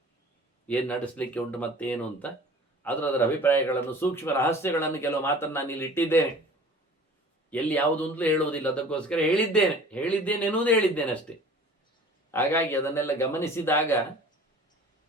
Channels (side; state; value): both; normal; correlation 0.45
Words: ಏನು ನಡೆಸಲಿಕ್ಕೆ ಉಂಟು ಮತ್ತೇನು ಅಂತ. ಅದರ ಅಭಿಪ್ರಾಯಗಳನ್ನು, ಸೂಕ್ಷ್ಮ ರಹಸ್ಯಗಳನ್ನು, ಕೆಲವು ಮಾತನ್ನು ನಾನು ಇಲ್ಲಿ ಇಟ್ಟಿದ್ದೇನೆ. ಎಲ್ಲಿ ಯಾವುದು ಅಂತಲೂ ಹೇಳುವುದಿಲ್ಲ. ಅದಕ್ಕೋಸ್ಕರ ಹೇಳಿದ್ದೇನೆ ಎನ್ನುವುದೇ ಹೇಳಿದ್ದೇನೆ ಅಷ್ಟೇ. ಹಾಗಾಗಿ ಅದನ್ನೆಲ್ಲ ಗಮನಿಸಿದಾಗ